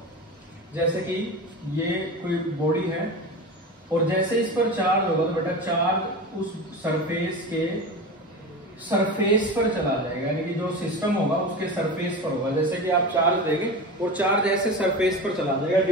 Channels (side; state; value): both; normal; correlation 0.28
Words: जैसे कि ये कोई बॉडी है और जैसे इस पर चार्ज होगा तो बेटा चार्ज उस सरफेस पर चला जाएगा, यानी कि जो सिस्टम होगा उसके सरफेस पर होगा। जैसे कि आप चार्ज देंगे और चार्ज ऐसे सरफेस पर चला जाएगा